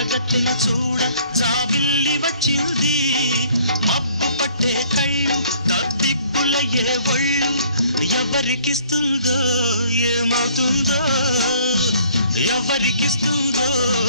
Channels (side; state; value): both; inverted; correlation -0.58